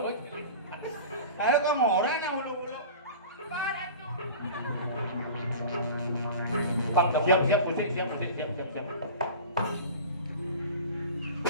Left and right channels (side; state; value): both; inverted; correlation -0.37